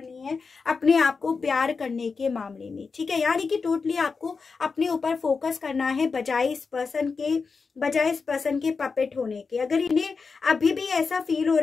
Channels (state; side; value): quieter; right; 4.8 dB